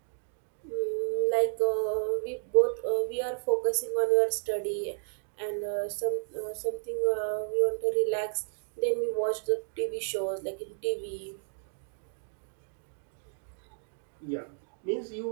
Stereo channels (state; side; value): silent; left; digital silence